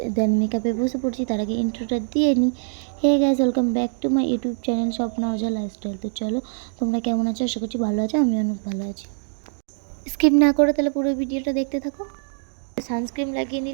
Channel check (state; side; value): silent; left; digital silence